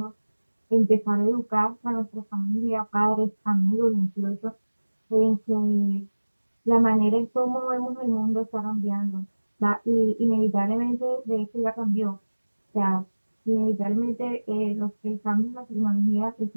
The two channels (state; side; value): inverted; both; correlation -1.00